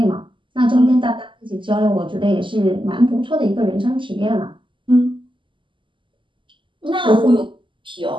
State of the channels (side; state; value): left; late; 0.24 ms